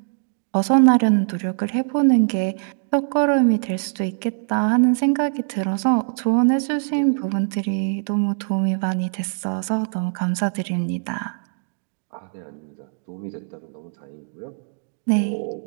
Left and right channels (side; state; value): left; silent; digital silence